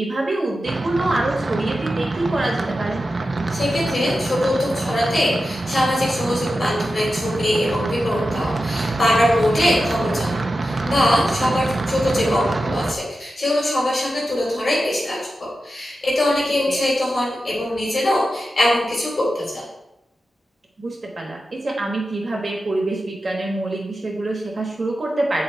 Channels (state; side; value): normal; both; correlation 0.91